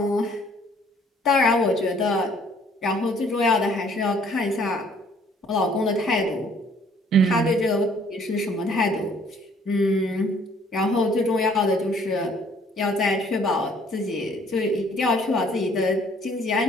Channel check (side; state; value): both; normal; correlation 0.60